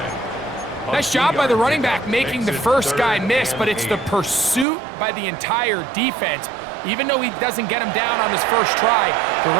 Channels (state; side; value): drops out; left; at 4.7 s